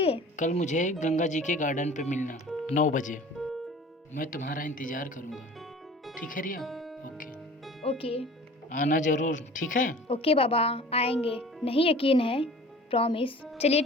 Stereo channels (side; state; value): both; normal; correlation 0.44